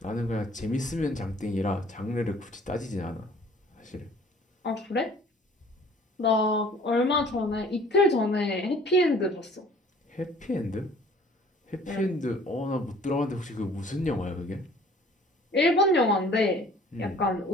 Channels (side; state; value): both; normal; correlation 0.53